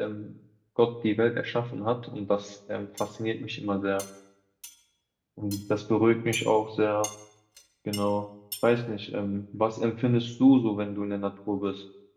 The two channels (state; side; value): identical; both; correlation 1.00